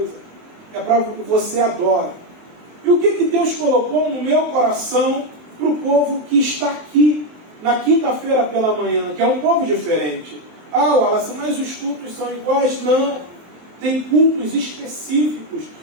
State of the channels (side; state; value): left; late; 23 ms